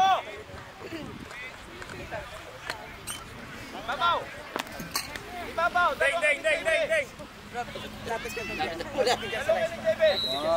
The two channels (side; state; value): both; identical; correlation 1.00